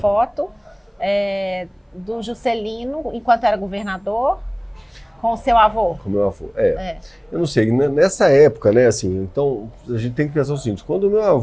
do Juscelino, enquanto era governador, com o seu avô. Com o meu avô, Eu não sei, nessa época, né, assim, então a gente tem que pensar o seguinte, quando o meu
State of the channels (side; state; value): both; identical; correlation 1.00